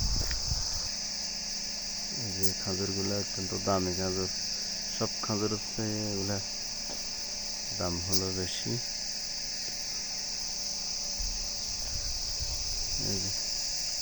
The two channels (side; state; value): both; identical; correlation 1.00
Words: এই যে খাজুরগুলা অত্যন্ত দামি খাজুর। সব খাজুরের চেয়ে এগুলা দাম হলো বেশি। এই যে